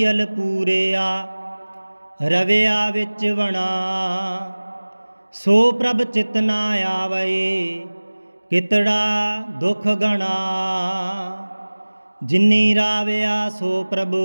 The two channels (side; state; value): both; inverted; correlation -1.00